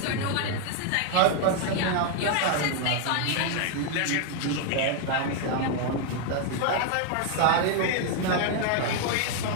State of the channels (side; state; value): both; different; correlation 0.00